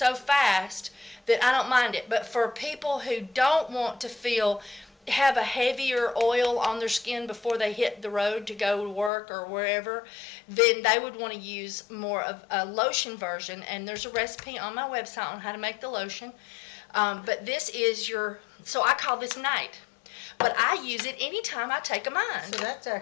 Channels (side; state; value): right; drops out; at 9.1 s